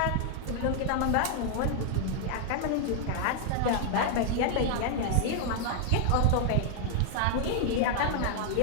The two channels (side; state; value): both; different; correlation 0.00